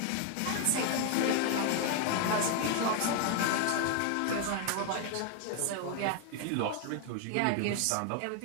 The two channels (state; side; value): different; both; correlation 0.00